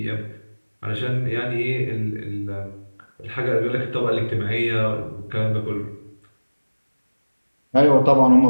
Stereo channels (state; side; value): inverted; both; correlation -1.00